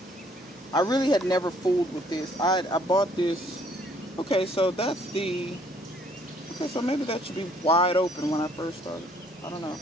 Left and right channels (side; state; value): both; normal; correlation 0.63